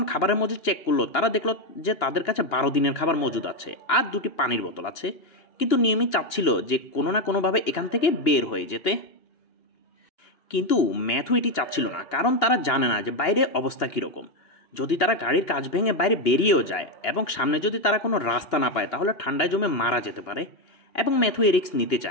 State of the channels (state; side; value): late; right; 2.9 ms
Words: খাবারের মজুদ চেক করলো, তারা দেখলো যে তাদের কাছে ১২ দিনের খাবার মজুদ আছে, আর ২টি পানির বোতল আছে। কিন্তু নিয়মিত চাচ্ছিল যে কোনো না কোনোভাবে এখান থেকে বের হয়ে যেতে। কিন্তু ম্যাথু এটি চাচ্ছিল না, কারণ তারা জানে না যে বাইরে অবস্থা কীরকম। যদি তারা গাড়ির কাঁচ ভেঙে বাইরে বেরিয়েও যায় এবং সামনে যদি তারা কোনো রাস্তা না পায়, তাহলে ঠান্ডায় জমে মারা যেতে পারে। এবং ম্যাথু এ রিস্ক নিতে